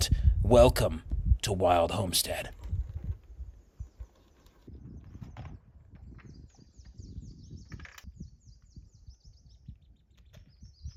Welcome to Wild Homestead.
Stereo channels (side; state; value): both; identical; correlation 1.00